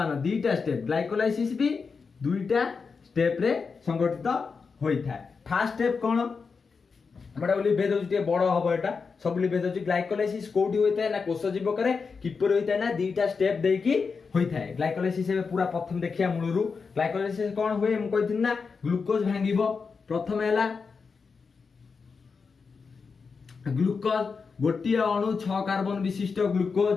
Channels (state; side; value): quieter; right; 5.1 dB